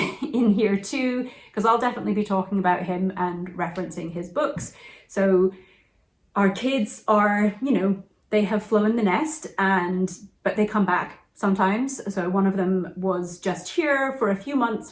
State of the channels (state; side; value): identical; both; correlation 1.00